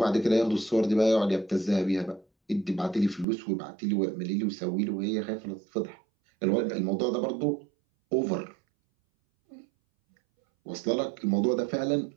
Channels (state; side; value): drops out; left; at 3.2 s